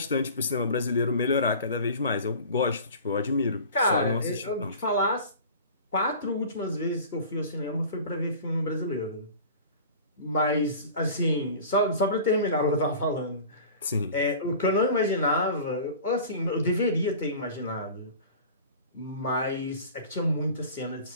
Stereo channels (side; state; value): both; inverted; correlation -0.40